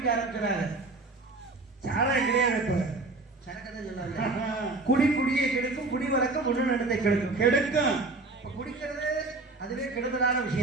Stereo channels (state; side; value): quieter; left; 3.3 dB